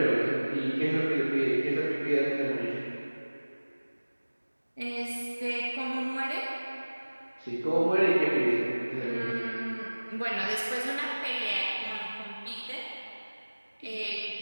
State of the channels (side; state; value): both; inverted; correlation -1.00